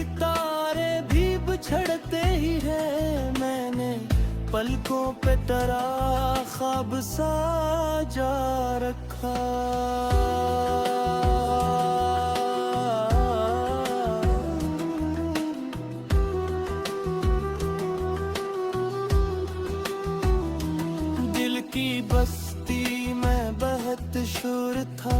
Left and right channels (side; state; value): both; identical; correlation 1.00